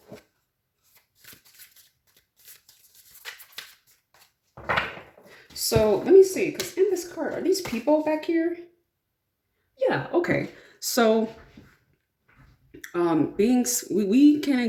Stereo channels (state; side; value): identical; both; correlation 1.00